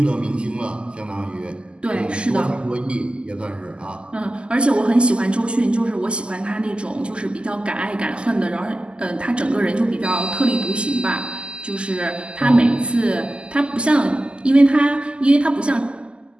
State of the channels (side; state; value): left; late; 0.051 ms